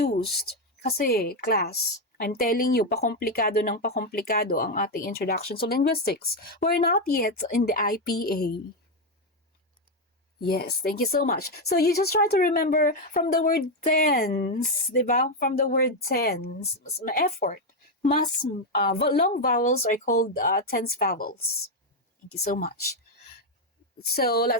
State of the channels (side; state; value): both; normal; correlation 0.05